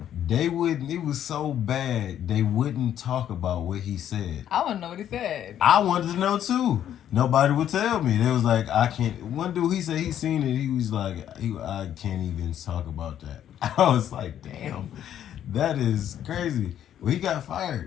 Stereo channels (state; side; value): quieter; right; 10.5 dB